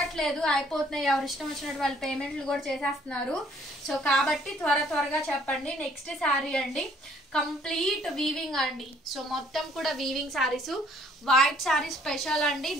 అయిపోతున్నాయి. ఎవరు ఇష్టం వచ్చినట్టు వాళ్ళు పేమెంట్లు కూడా చేసేస్తున్నారు. సో కాబట్టి త్వరగా చెప్పండి. నెక్స్ట్ శారీ అండి, కంప్లీట్ వీవింగ్ అండి. సో మొత్తం కూడా weaving saris, white sari special అండి.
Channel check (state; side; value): normal; both; correlation 0.61